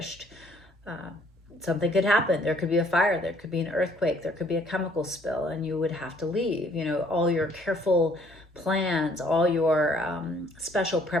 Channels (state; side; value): normal; both; correlation 0.62